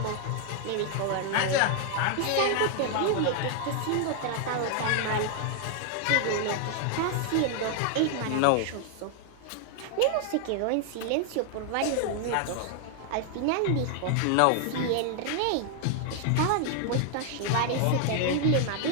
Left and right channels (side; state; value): both; different; correlation 0.00